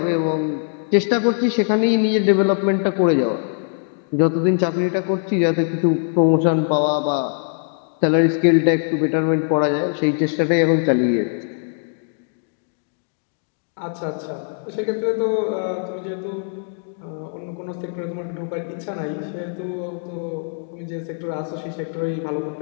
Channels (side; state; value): right; silent; digital silence